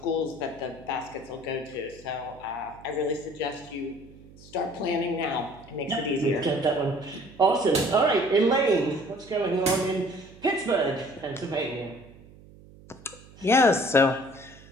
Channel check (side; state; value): right; noise; hum, 22 dB below the sound